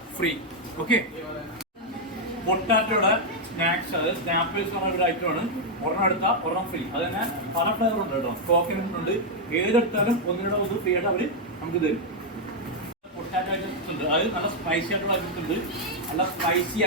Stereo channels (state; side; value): normal; both; correlation -0.01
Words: ഫ്രീ. ഓക്കെ, പൊട്ടാറ്റോയുടെ സ്നാക്സ്, അത് സ്നാപ്പിൾസ് പറഞ്ഞ ഒരു ഐറ്റമാണ്. ഒരെണ്ണം എടുത്താൽ ഒരെണ്ണം ഫ്രീ. അത് തന്നെ പല ഫ്ലേവർ ഉണ്ട് കേട്ടോ. കോക്കനട്ട് ഉണ്ട്. ഏതെടുത്താലും ഒന്നിനോട് ഒന്ന് ഫ്രീ ആയിട്ട് അവർ നമുക്ക് തരും. പൊട്ടാറ്റോ ഐറ്റംസ് ഉണ്ട്, അത് നല്ല സ്പൈസി ആയിട്ടുള്ള ഐറ്റംസ് ഉണ്ട്, നല്ല സ്പൈസി